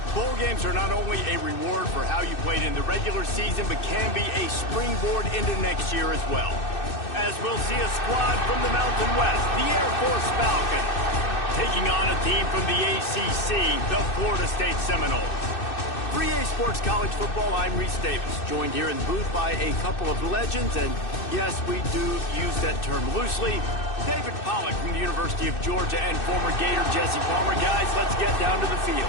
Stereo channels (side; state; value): right; late; 2.6 ms